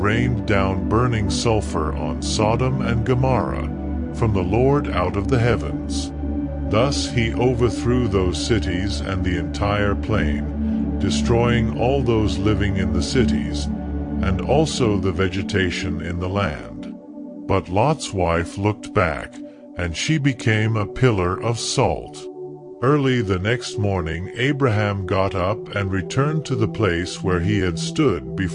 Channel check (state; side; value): identical; both; correlation 1.00